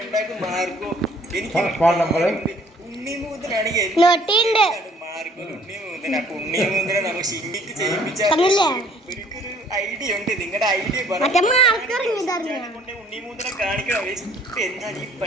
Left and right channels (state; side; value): normal; both; correlation 0.58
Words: ഫോൺ നമ്പർ ഐഡിയ ഉണ്ട്. നിങ്ങളുടെ ഐഡിയ